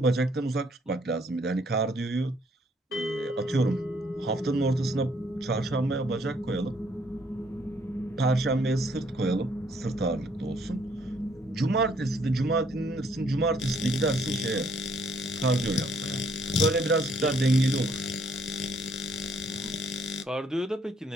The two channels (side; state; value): both; normal; correlation 0.67